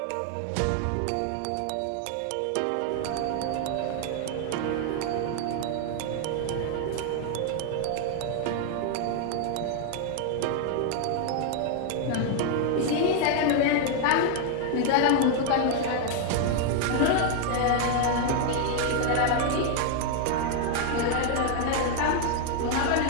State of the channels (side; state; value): both; different; correlation 0.00